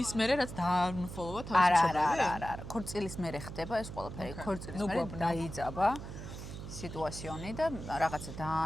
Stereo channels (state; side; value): noise; right; hum, 10 dB below the sound